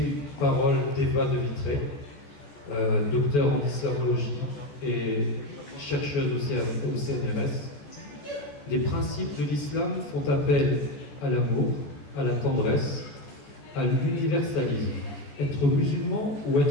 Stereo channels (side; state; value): right; late; 14 ms